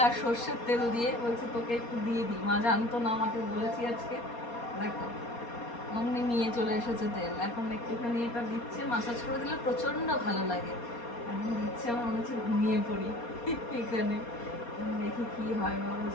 আর সর্ষের তেল দিয়ে, বলছে তোকে একটু দিয়ে দিই। মা জানতো না, আমাকে বলেছি আজকে, দেখো অমনি নিয়ে চলে এসেছে তেল। এখন একটুখানি এটা দিচ্ছে, মাসাজ করে দিলে প্রচন্ড ভালো লাগে। এখন দিচ্ছে, আমার মনে হচ্ছে ঘুমিয়ে পড়ি এখানে। দেখি কি হয়। মা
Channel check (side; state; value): right; late; 4.2 ms